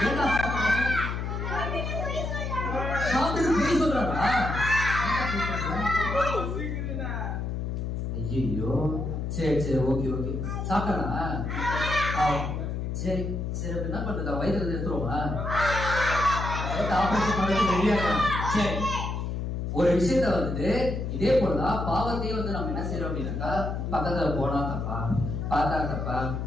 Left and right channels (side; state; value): left; noise; hum, 3 dB below the sound